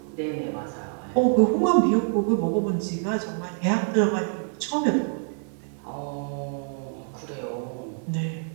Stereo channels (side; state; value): left; silent; 61 dB below the other